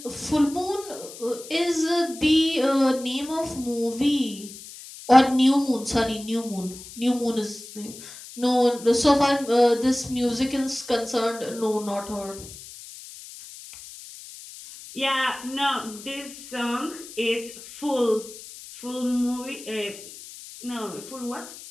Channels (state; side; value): noise; left; hiss, 15 dB below the sound